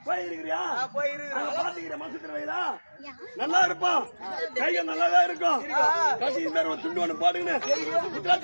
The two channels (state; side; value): inverted; both; correlation -1.00